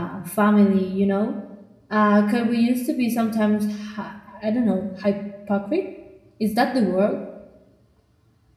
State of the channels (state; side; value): identical; both; correlation 1.00